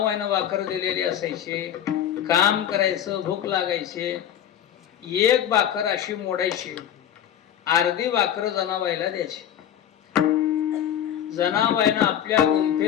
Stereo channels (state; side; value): quieter; right; 10.2 dB